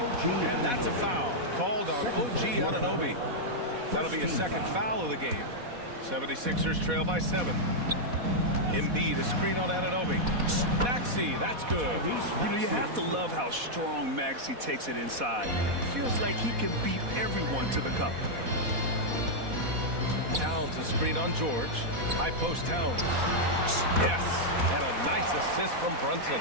And that's a foul called on OG Anunoby. That'll be a second foul of the game. 76ers trail by 7. Embiid, a screen on Anunoby. Maxey, that's good. You know, you have to love how strong Maxey takes it inside. Feels like he can beat everyone to the cup. Towns, a screen on George. High post Towns. Yes, and a nice assist from Brunson.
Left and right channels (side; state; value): left; late; 4.1 ms